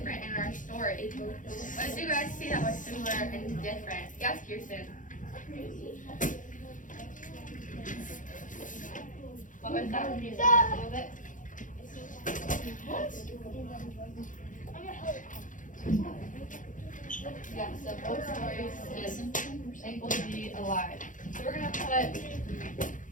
in our story? What did you guys see that was similar and different? Yes, Kirsten. What was that? Can you say that a little bit? Yeah, so both stories is thankful to be alive. So we're gonna put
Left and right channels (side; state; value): right; late; 0.38 ms